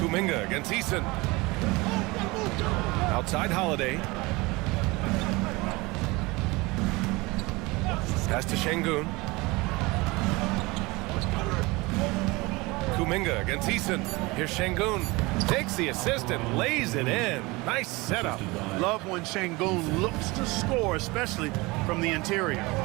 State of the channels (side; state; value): left; quieter; 23.6 dB